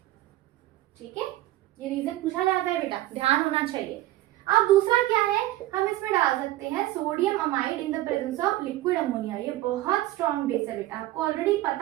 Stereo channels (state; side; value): quieter; left; 16.0 dB